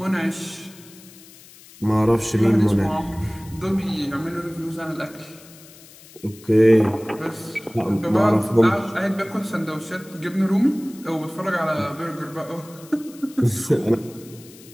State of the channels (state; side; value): noise; left; hiss, 22 dB below the sound